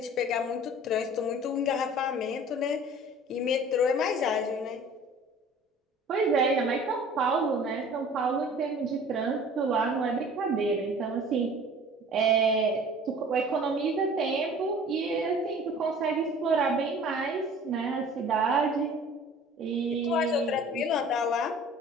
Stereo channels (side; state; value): both; normal; correlation 0.46